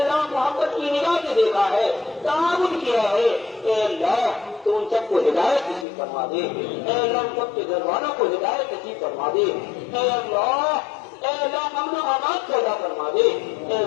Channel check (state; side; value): drops out; right; at 5.9 s